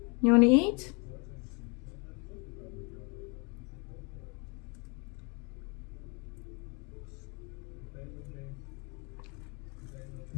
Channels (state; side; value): quieter; right; 32.5 dB